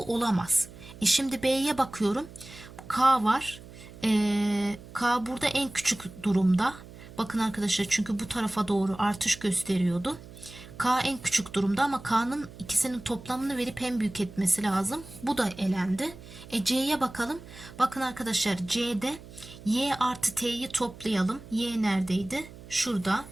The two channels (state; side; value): noise; right; hum, 17 dB below the sound